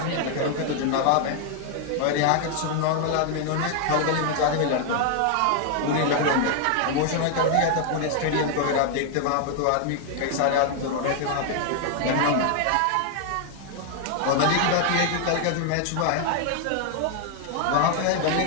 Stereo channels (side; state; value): both; different; correlation 0.00